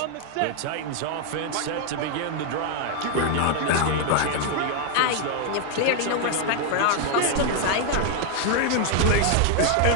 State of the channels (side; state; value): both; different; correlation 0.00